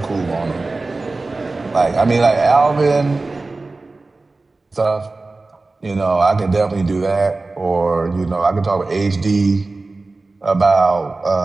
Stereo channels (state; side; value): quieter; left; 3.4 dB